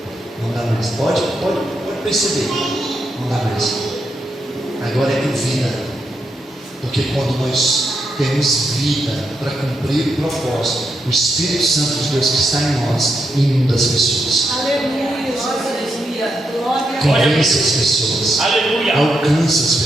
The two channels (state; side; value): normal; both; correlation 0.82